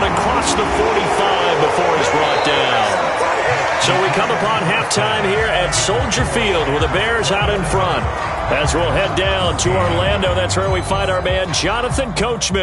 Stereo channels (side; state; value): both; identical; correlation 1.00